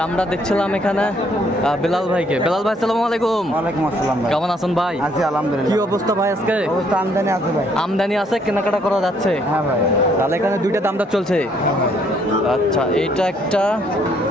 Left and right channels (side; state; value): both; normal; correlation 0.67